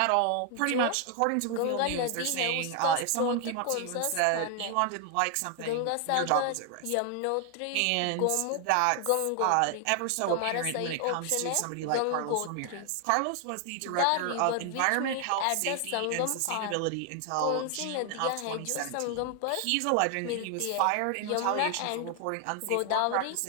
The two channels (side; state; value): both; different; correlation 0.00